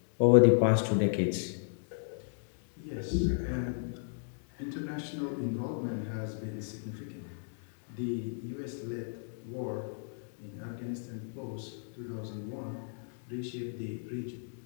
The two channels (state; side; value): silent; right; digital silence